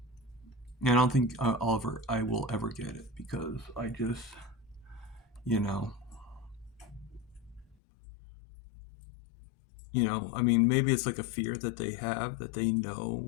and I don't think I will ever get it because I just, you know, I mean, maybe it's like a fear that they have that they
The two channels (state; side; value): drops out; right; at 7.8 s